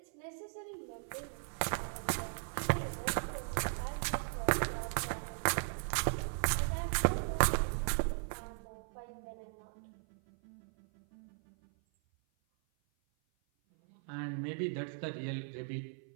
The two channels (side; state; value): left; silent; 53 dB below the other